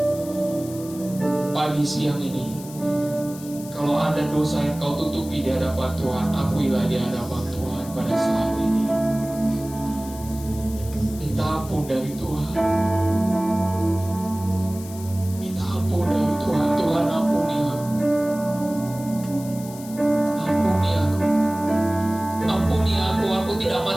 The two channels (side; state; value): left; noise; hiss, 16 dB below the sound